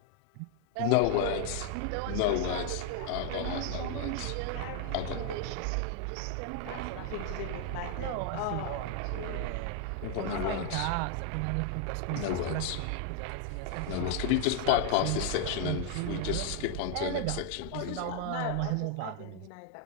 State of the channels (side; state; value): both; different; correlation 0.00